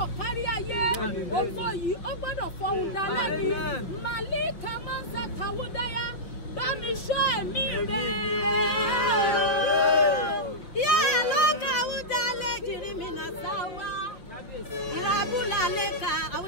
kárí ayé. Ògo yìí ó gbọ́dọ̀ fọhùn dálẹ́ ni. Màlí kàmá sàkàwúdáyà. Bá mi ṣọ́ ẹ̀mí rẹ̀. Yé ló kàwúdá lè jìrì mi nà sáwá. Ìràbùlà lè ka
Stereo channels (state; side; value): late; right; 6.0 ms